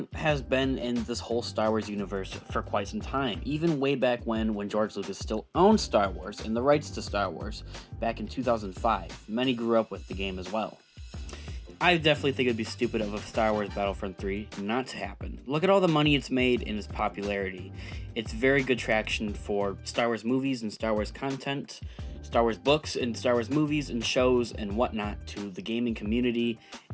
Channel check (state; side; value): identical; both; correlation 1.00